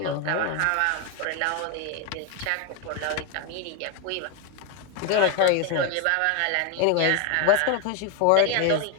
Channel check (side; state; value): both; different; correlation 0.01